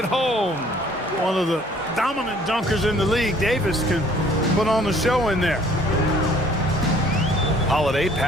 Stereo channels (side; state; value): both; normal; correlation 0.57